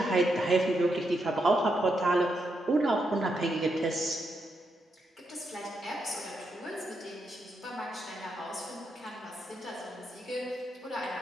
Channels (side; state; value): both; normal; correlation 0.82